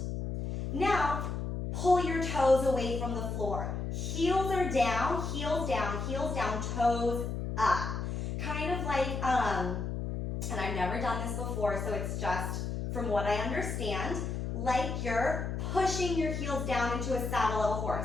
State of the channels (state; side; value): noise; left; hum, 3 dB below the sound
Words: Now, pull your toes away from the floor. Heels are down, heels down, heels down, toes up. Kind of like, and I've never done this before, so it's just from what I understand, like you're pushing your heels down into a saddle of a